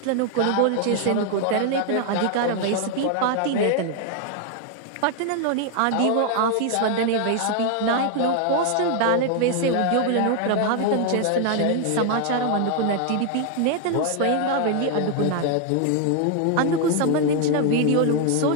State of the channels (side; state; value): both; different; correlation 0.00